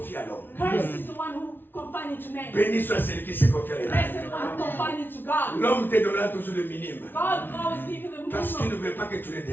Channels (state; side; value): late; right; 0.099 ms